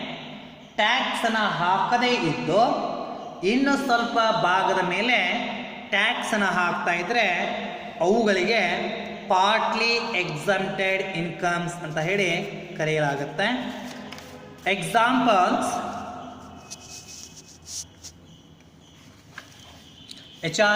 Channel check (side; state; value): both; identical; correlation 1.00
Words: ಟ್ಯಾಕ್ಸನ್ನು ಹಾಕದೇ ಇದ್ದು ಇನ್ನು ಸ್ವಲ್ಪ ಭಾಗದ ಮೇಲೆ ಟ್ಯಾಕ್ಸನ್ನು ಹಾಕ್ತಾ ಇದ್ರೆ ಅವುಗಳಿಗೆ ಪಾರ್ಟ್ಲಿ ಎಕ್ಸಂಪ್ಟೆಡ್ ಇನ್ಕಮ್ಸ್ ಅಂತ ಹೇಳಿ ಕರೆಯಲಾಗುತ್ತೆ. Examples: